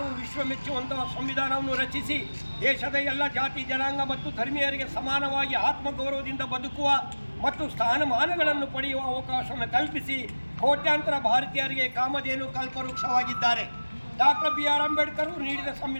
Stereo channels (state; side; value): inverted; both; correlation -1.00